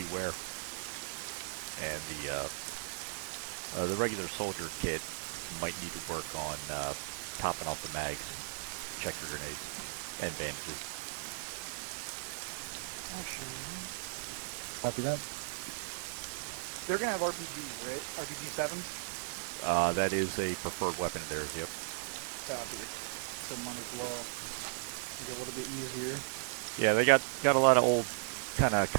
And the regular soldier kit might need to work on topping off the mags, checker grenades, and bandages. Copy that. They're gonna have RPGs, right? RPG 7s? That is a preferred weapon of theirs, yep. Copy. So might as well make it a little bit easier. Yeah, they got a lot of old kind of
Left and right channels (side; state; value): left; silent; digital silence